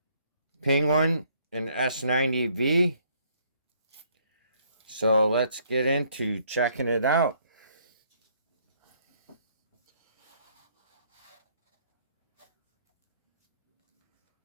penguin and S90v. So let's get into checking it out.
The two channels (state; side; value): inverted; both; correlation -0.66